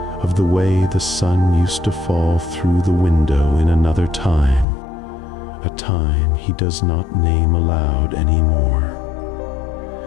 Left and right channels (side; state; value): right; drops out; at 4.7 s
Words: of the way the sun used to fall through the window in another time, a time he does not name aloud anymore.